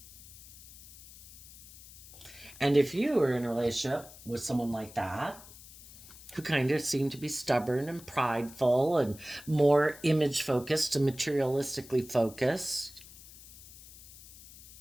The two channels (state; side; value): noise; left; hiss, 19 dB below the sound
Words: And if you are in a relationship with someone like that, who kind of seem to be stubborn and prideful and more image focused and materialistically focused,